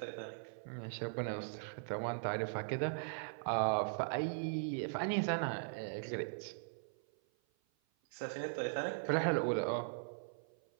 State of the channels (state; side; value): silent; left; 51 dB below the other